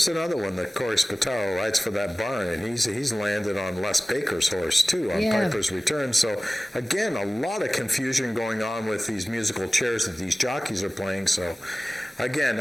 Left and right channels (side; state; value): both; normal; correlation 0.97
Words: another one that Corey Spataro rides for that barn, and he's landed on Les Baker's horse, too, on Piper's Return. So, again, a lot of confusion going on with these musical chairs that these jockeys are playing. So, again,